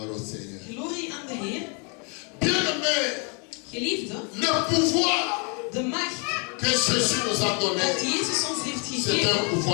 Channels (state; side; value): quieter; right; 36.1 dB